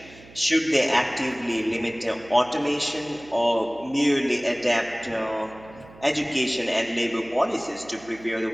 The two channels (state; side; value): noise; right; hum, 22 dB below the sound